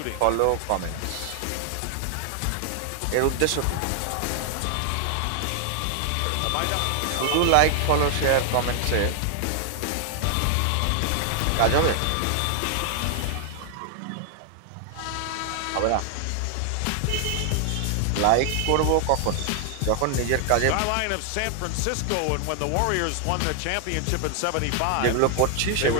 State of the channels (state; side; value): different; both; correlation 0.00